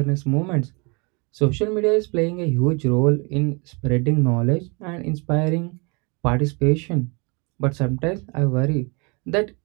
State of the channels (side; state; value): left; quieter; 30.8 dB